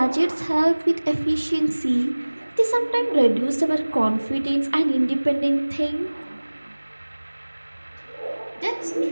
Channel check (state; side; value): inverted; both; correlation -1.00